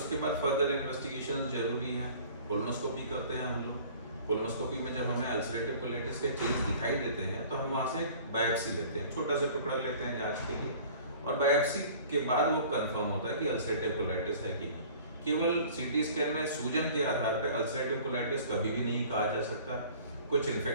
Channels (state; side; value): inverted; both; correlation -0.48